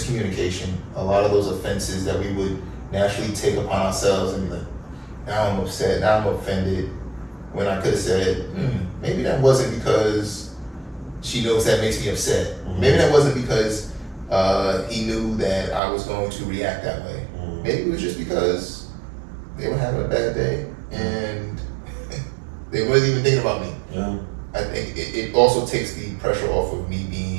a lot of those offenses that we would naturally take upon ourselves and be like, now I'm upset, now I'm offended, when I could have said, maybe that wasn't because she knows that makes me upset. Maybe that wasn't because he knew that I was going to react that way. Maybe it was just because they were having a bad day and they wasn't even thinking about me. Yeah. I think it also takes the pressure off of me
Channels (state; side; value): drops out; left; at 15.8 s